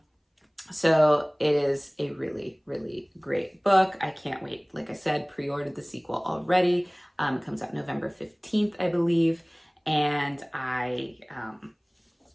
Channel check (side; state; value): both; identical; correlation 1.00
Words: So it is a really, really great book. I can't wait. Like I said, pre-ordered the sequel already. It comes out November 15th, I believe, and I